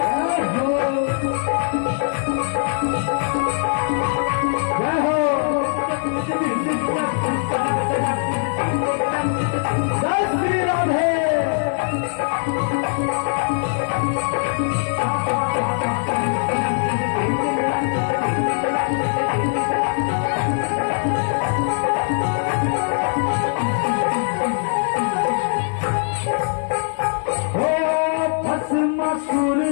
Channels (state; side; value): silent; right; 56 dB below the other